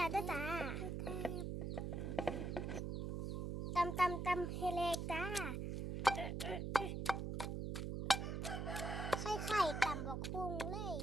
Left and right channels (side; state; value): right; noise; hum, 2 dB below the sound